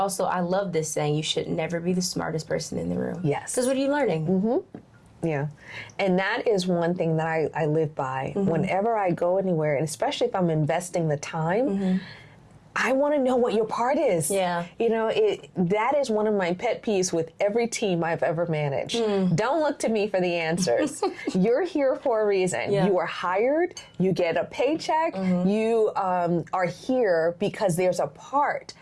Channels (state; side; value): identical; both; correlation 1.00